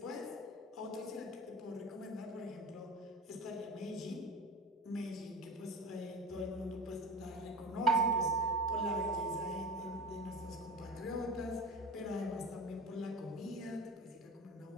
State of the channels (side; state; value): both; normal; correlation 0.32